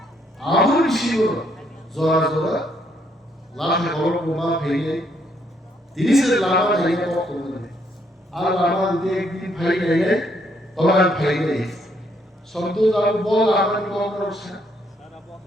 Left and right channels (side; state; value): both; normal; correlation 0.71